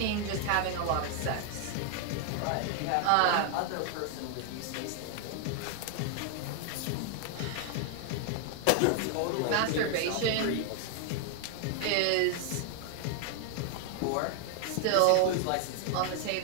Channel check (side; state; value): both; different; correlation 0.00